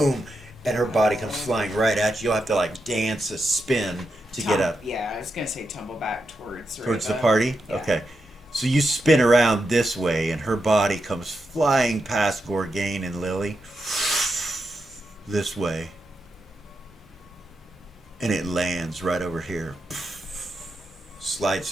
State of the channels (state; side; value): normal; both; correlation 0.86